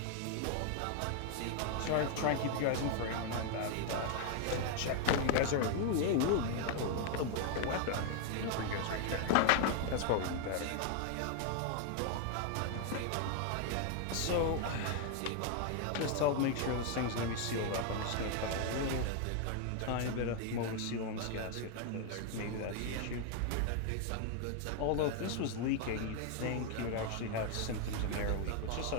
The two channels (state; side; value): different; both; correlation 0.00